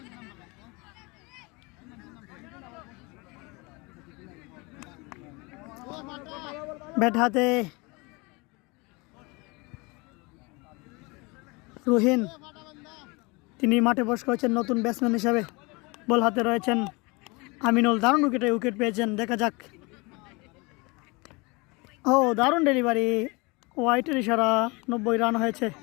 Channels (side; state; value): right; quieter; 26.8 dB